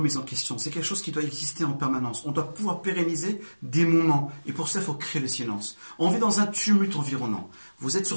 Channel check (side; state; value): both; inverted; correlation -1.00